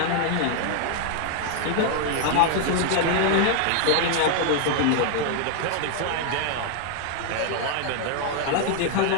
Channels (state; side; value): different; both; correlation 0.00